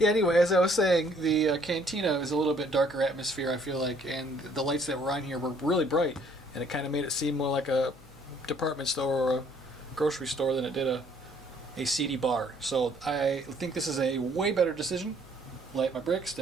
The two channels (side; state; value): left; noise; hum, 23 dB below the sound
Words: anyway, as I was saying, the cantina is a little bit darker atmosphere, I feel like, and the lights that were on here were really bright, and it kind of made it seem more like a department store or a grocery store than it did a seedy bar. So I think this is a way better decision. Light My Bricks